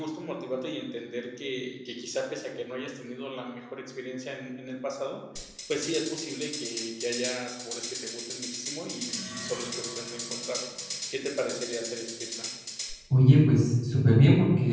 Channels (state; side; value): identical; both; correlation 1.00